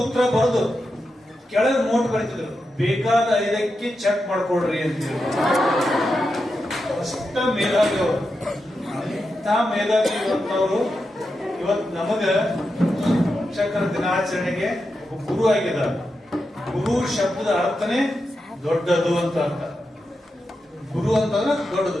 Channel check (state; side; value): normal; both; correlation 0.88